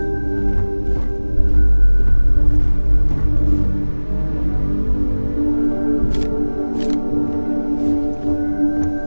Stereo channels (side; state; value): both; inverted; correlation -1.00